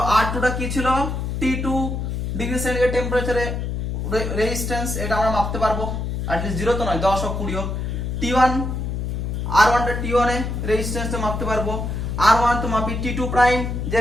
R2 টা কি ছিল? T2 ডিগ্রি সেন্টিগ্রেড টেম্পারেচারে রেজিস্ট্যান্স, এটা আমরা মাপতে পারবো। অ্যাটলিস্ট 0 তো নয়, 10 হোক 20 হোক। T1 R1 টা T1 এ রেজিস্ট্যান্সটা মাপতে পারবো। R1 তো মাপি T2 প্রাইম যে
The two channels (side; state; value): left; noise; hum, 3 dB below the sound